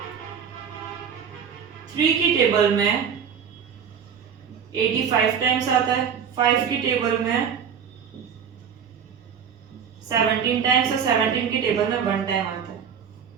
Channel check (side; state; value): left; quieter; 7.5 dB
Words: 3 की टेबल में 85 टाइम्स आता है, 5 की टेबल में 17 टाइम्स और 17 की टेबल में 1 टाइम आता है।